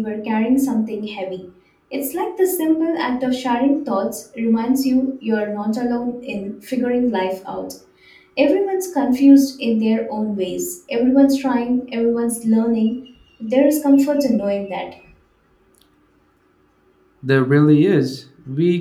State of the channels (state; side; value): identical; both; correlation 1.00